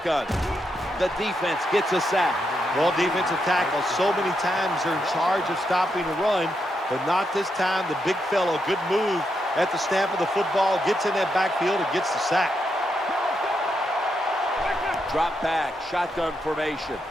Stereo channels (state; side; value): normal; both; correlation 0.82